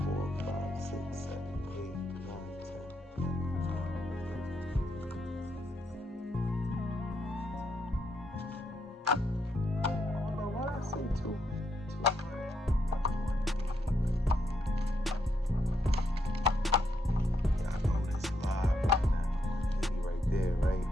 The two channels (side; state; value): both; normal; correlation 0.78